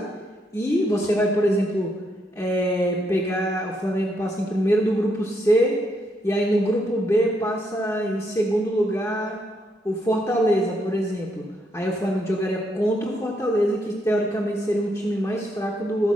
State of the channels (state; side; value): normal; both; correlation 0.76